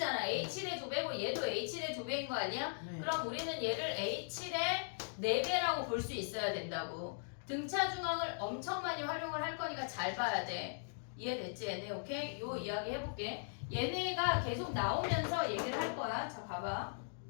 A7의 2배고 얘도 A7의 2배인 거 아니야? 네. 그럼 우리는 얘를 A7의 4배라고 볼 수 있어야 된다고. 등차 중앙을 엄청 많이 활용을 할 거니까 잘 봐야 돼. 이해됐지 얘네? 오케이? 요 이야기 해볼게. 얘네가 계속 나오면서 얘기를 할 거야. 자 봐봐.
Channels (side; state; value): right; silent; digital silence